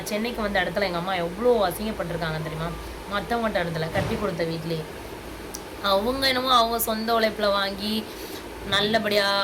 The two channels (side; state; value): both; identical; correlation 1.00